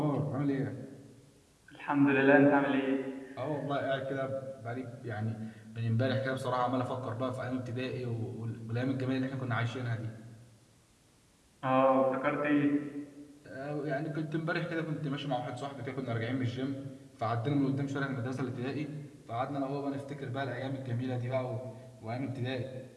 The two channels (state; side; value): identical; both; correlation 1.00